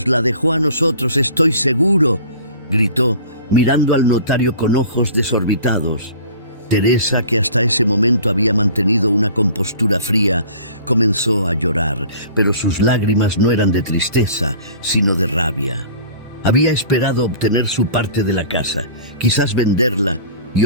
la dejó a nosotros, estoy seguro», gritó, mirando al notario con ojos desorbitados. Teresa, que hasta ese momento había mantenido una compostura fría, comenzó a llorar, pero sus lágrimas no eran de tristeza, sino de rabia. Había esperado obtener su parte de la casa, quizás venderla y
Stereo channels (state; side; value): inverted; both; correlation -0.45